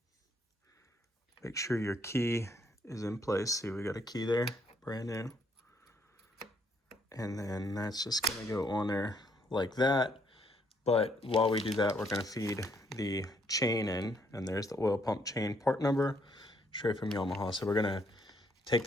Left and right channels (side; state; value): both; normal; correlation 0.70